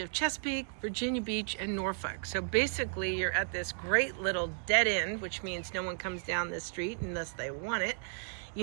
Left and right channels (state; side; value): silent; left; digital silence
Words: Chesapeake, Virginia Beach, and Norfolk. So basically you're at this great little dead end, which means no one comes down this street unless they want it.